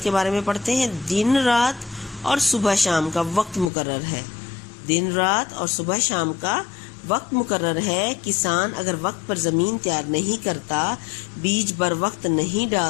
کے بارے میں پڑھتے ہیں۔ دن رات اور صبح شام کا وقت مقرر ہے۔ دن رات اور صبح شام کا وقت مقرر ہے۔ کسان اگر وقت پر زمین تیار نہیں کرتا، بیج بر وقت نہیں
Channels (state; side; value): drops out; right; at 3.7 s